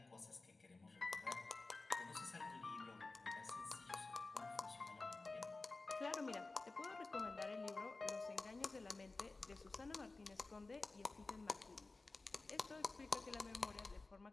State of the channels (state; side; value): quieter; right; 3.5 dB